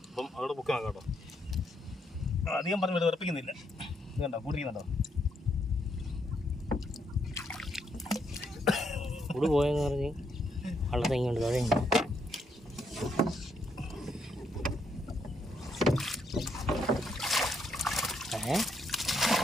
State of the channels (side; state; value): both; normal; correlation 0.75